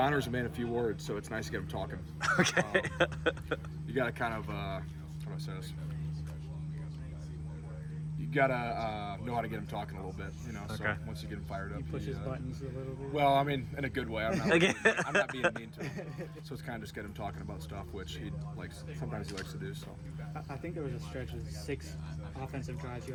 a man of few words, so it's nice to get him talking. Okay. You got to kind of, how do I say this? You gotta know how to get him talking a little bit, So once you get him fired up, you push his buttons a little bit. Well, I mean, in a good way. I'm not being mean to him. So it's kind of just get him talking about stuff, which sometimes he likes to do. So I think there was a stretch of 6 offensive drives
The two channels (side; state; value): both; identical; correlation 1.00